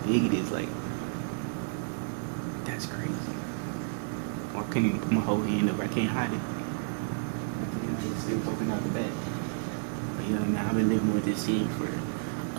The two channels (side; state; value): left; silent; digital silence